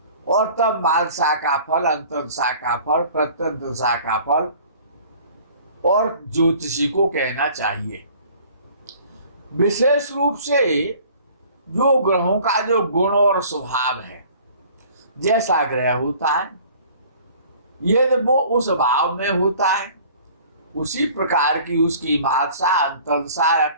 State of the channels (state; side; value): inverted; both; correlation -0.50